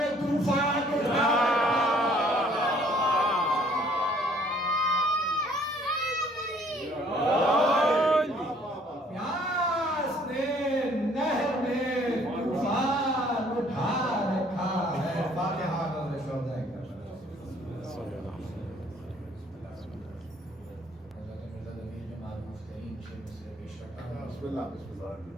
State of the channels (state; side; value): normal; both; correlation 0.59